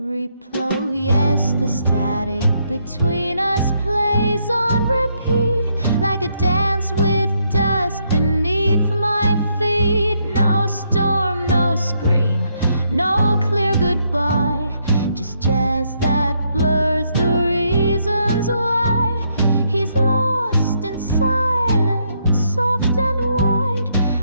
Yes, the static between us plays on repeat, like a dance with dust beneath my feet. No storm, no scream, no clear goodbye, just jazz that blurs the reasons why. He's lost in silence, soft and wide,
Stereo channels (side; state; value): both; inverted; correlation -0.75